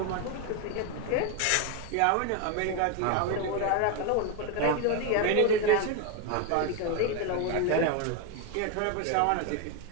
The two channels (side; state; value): both; different; correlation 0.02